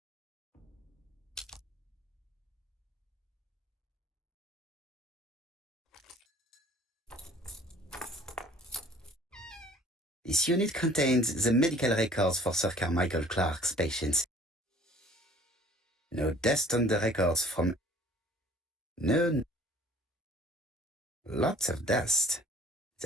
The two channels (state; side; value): normal; both; correlation 0.52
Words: This unit contains the medical records for Sir Carmichael Clark's patients. No dust on the records from... No... Lots of dust.